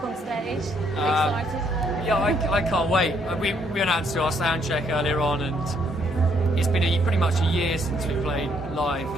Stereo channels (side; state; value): both; normal; correlation 0.70